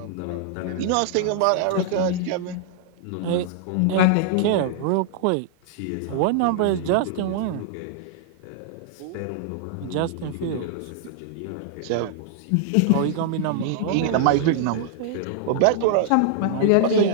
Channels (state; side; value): different; both; correlation -0.01